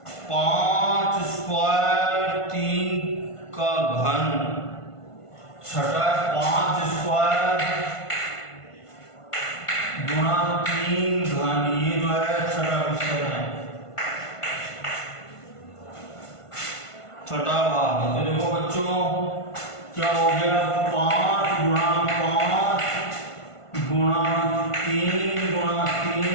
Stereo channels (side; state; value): right; late; 1.5 ms